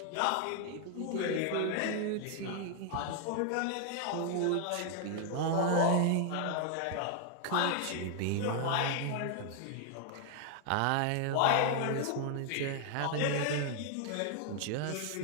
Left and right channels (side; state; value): both; different; correlation 0.00